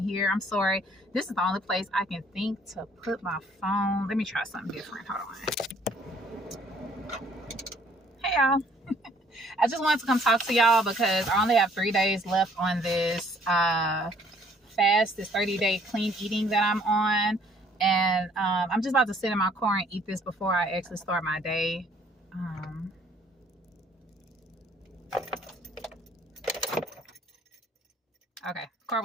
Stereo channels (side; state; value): both; normal; correlation 0.60